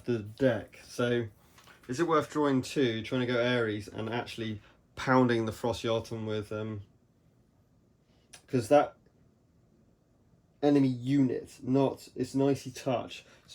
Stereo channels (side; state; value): both; identical; correlation 1.00